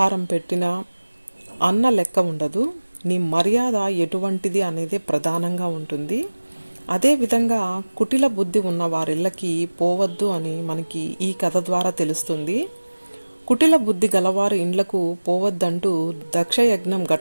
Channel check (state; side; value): inverted; both; correlation -1.00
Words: పెట్టినా అన్న లెక్క ఉండదు. నీ మర్యాద ఎటువంటిది అనేదే ప్రధానంగా ఉంటుంది. అదేవిధంగా కుటిల బుద్ధి ఉన్న వారిళ్ళకి పోవద్దు అని మనకి ఈ కథ ద్వారా తెలుస్తుంది. కుటిల బుద్ధి గలవారి ఇండ్లకు పోవద్దంటూ దక్షయజ్ఞం